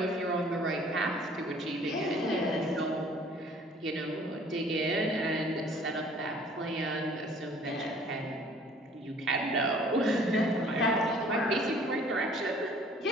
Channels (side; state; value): both; normal; correlation 0.54